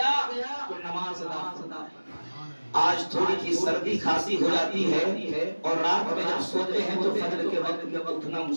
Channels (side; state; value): both; inverted; correlation -1.00